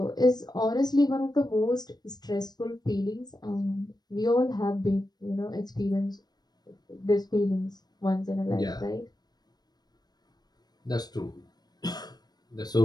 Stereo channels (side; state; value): right; late; 0.19 ms